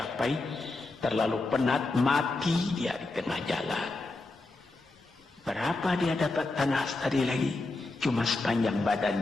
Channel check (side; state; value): right; quieter; 3.2 dB